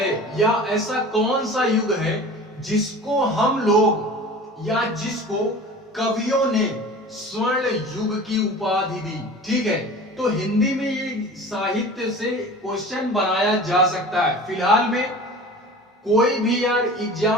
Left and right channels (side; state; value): both; normal; correlation 0.39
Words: या ऐसा कौन सा युग है जिसको हम लोग या जिसको कवियों ने स्वर्ण युग की उपाधि दी। ठीक है, तो हिंदी में ये साहित्य से क्वेश्चन बनाया जा सकता है। फिलहाल में कोई भी यार